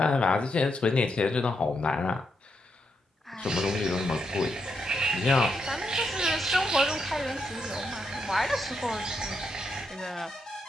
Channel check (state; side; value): normal; both; correlation 0.81